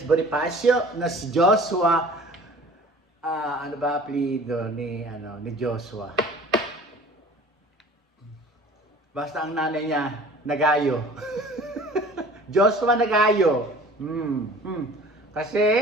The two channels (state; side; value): normal; both; correlation 0.46